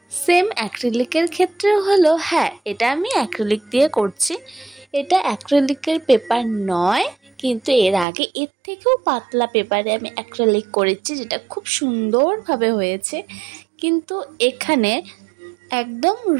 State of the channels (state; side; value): drops out; left; at 8.1 s